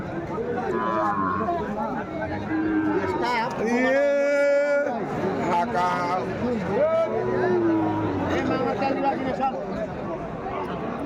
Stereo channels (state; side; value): identical; both; correlation 1.00